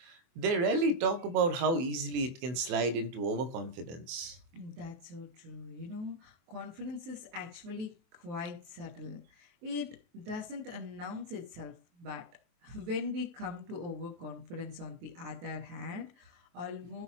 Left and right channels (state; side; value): late; left; 23 ms